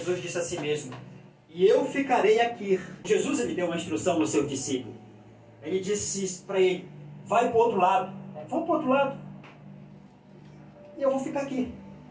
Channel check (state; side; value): identical; both; correlation 1.00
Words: disse assim mesmo, e eu ficarei aqui. Jesus, ele deu uma instrução aos seus discípulos. Ele disse para ele, vai para o outro lado. Vão para o outro lado. E eu vou ficar aqui.